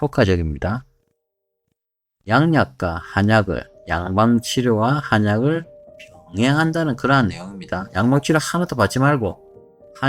양약과 한약을, 양방치료와 한약을 병행한다는 그러한 내용입니다. 양방치료 하나도 받지 말고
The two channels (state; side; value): identical; both; correlation 1.00